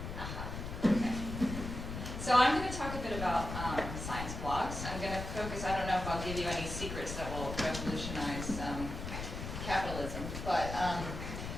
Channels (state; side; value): noise; left; rumble, 6 dB below the sound